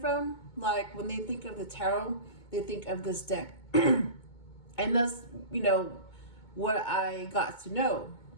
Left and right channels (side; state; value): right; late; 2.2 ms